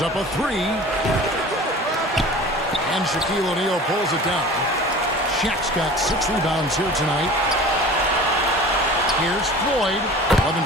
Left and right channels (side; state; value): both; normal; correlation 0.40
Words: up a 3. And Shaquille O'Neal pulls it down. Shaq's got 6 rebounds here tonight. Here's Floyd. 11